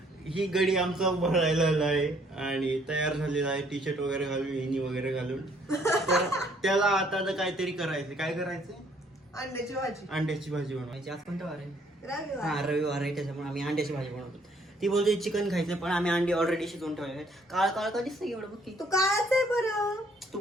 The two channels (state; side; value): normal; both; correlation 0.64